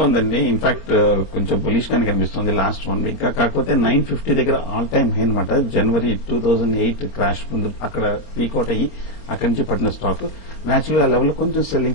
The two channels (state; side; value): late; right; 26 ms